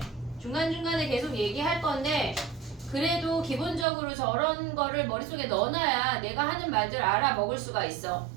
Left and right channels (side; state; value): left; drops out; at 3.9 s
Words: 중간중간에 계속 얘기할 건데 그래도 기본적으로 저런 거를 머릿속에 넣어놔야 내가 하는 말들 알아먹을 수가 있어.